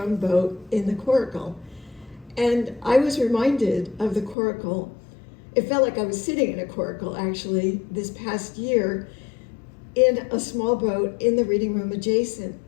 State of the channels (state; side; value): drops out; right; at 4.4 s